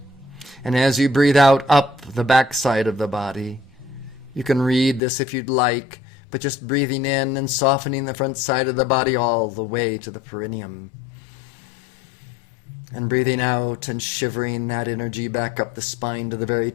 And as you breathe out up the back side of the body. You can read this if you'd like, but just breathing in and softening the front side of the body all the way to the perineum. And breathing out and shivering that energy back up the spine to the very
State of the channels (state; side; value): drops out; right; at 5.0 s